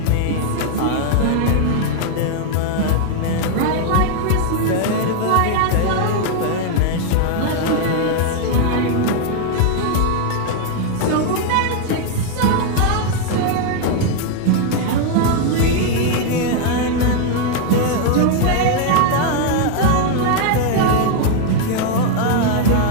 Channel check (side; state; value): both; different; correlation 0.00